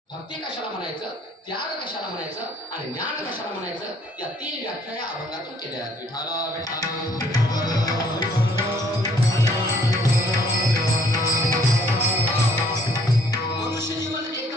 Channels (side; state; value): both; normal; correlation 0.61